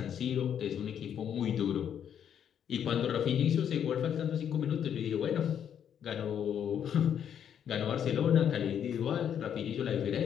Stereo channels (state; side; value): quieter; right; 8.9 dB